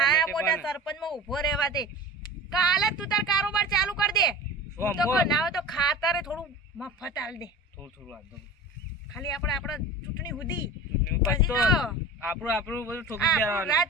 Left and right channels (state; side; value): normal; both; correlation 0.35